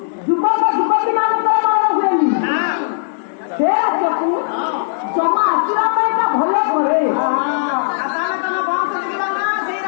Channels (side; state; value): right; silent; 68 dB below the other